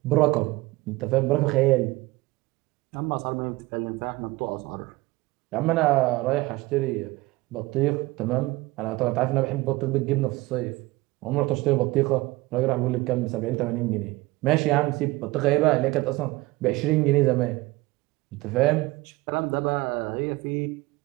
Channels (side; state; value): left; quieter; 20.7 dB